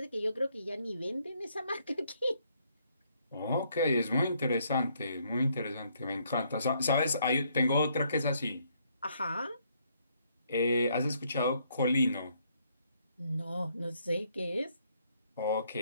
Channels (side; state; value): both; inverted; correlation -0.70